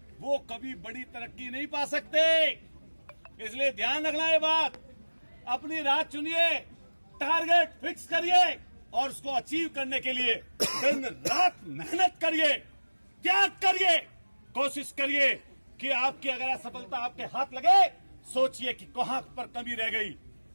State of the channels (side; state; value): both; inverted; correlation -1.00